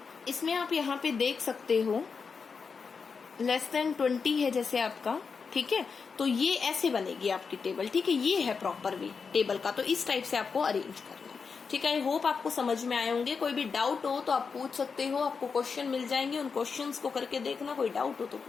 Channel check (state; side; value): quieter; right; 5.4 dB